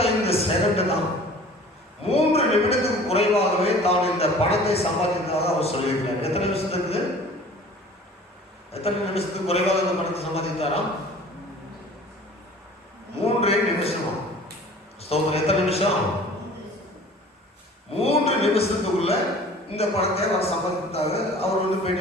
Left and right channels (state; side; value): normal; both; correlation 0.46